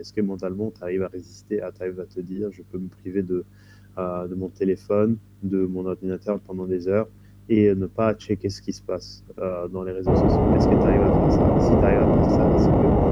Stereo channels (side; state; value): both; identical; correlation 1.00